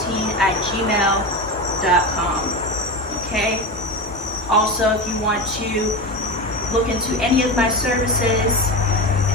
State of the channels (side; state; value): both; normal; correlation 0.22